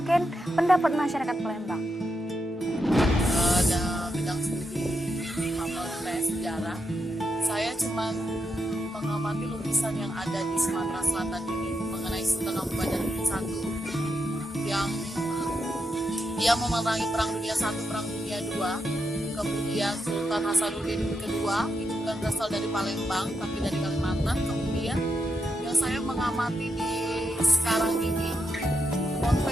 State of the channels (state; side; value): normal; both; correlation 0.84